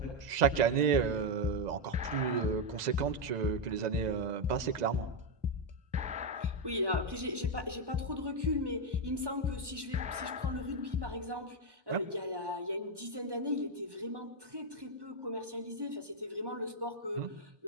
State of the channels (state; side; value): late; left; 1.1 ms